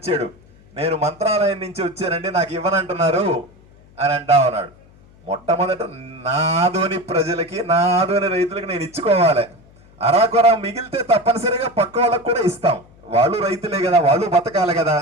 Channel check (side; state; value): left; noise; hum, 27 dB below the sound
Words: నేను మంత్రాలయం నుంచి వచ్చానండి నాకు ఇవ్వనంటున్నారు అని అంటా ఉన్నాడు. మొట్టమొదట నా ఆదోని ప్రజలకి, నా ఆదోని రైతులకి నేను ఇచ్చుకోవాలి. అరాకొరా మిగిలితే తప్పనిసరిగా పక్క వాళ్ళకు కూడా ఇస్తాం. వాళ్ళు రైతులే కదా, వాళ్ళు బతకాలి కదా.